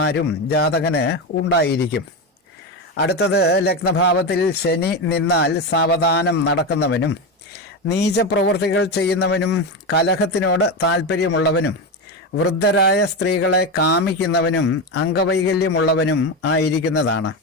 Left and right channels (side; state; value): both; normal; correlation 0.15